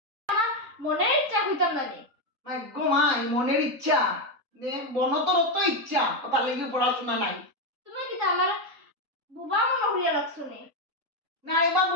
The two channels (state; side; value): late; left; 3.9 ms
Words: মনের ইচ্ছা হইতাম না রে মাই গো মাই মনের ইচ্ছা নে বনতর তো ইচ্ছা কথা লাগি পড়াশোনা নাই তুমি কি আমার বুবা মনে হইয়া রাখছো নি না এবার